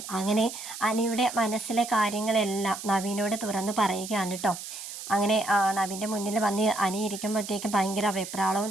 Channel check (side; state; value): right; noise; hiss, 10 dB below the sound